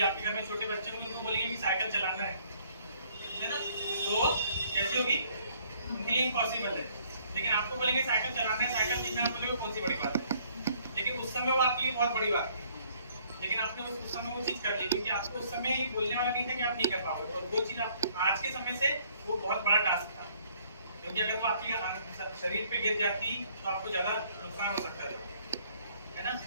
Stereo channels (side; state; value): both; inverted; correlation -0.63